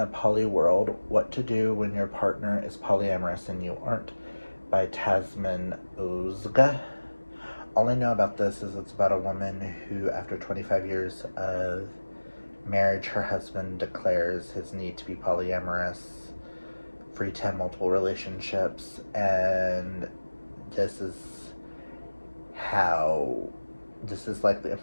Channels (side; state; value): both; inverted; correlation -1.00